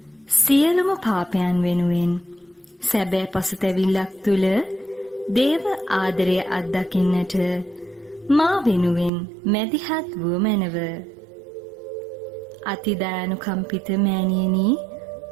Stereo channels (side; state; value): left; drops out; at 9.1 s